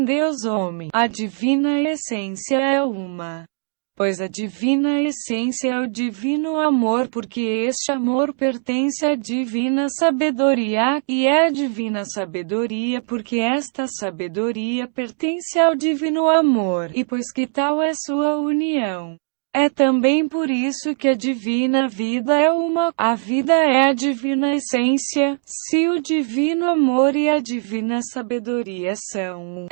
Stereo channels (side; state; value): left; silent; 62 dB below the other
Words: Deus homem. A divina essência é uma. Pois a divina essência é o divino amor, porque este amor pertence à divina sabedoria, e é a divina sabedoria porque esta sabedoria pertence ao divino amor, e pois que tal é sua união. É também por isso que a divina vida é uma, a vida é a divina essência. Se o divino amor e a divina sabedoria são um,